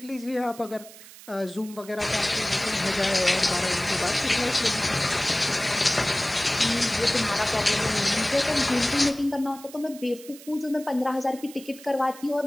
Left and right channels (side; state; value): right; noise; hiss, 18 dB below the sound